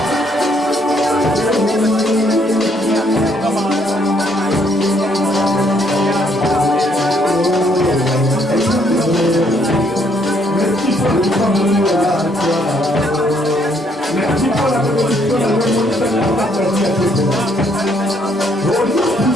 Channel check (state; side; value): normal; both; correlation 0.68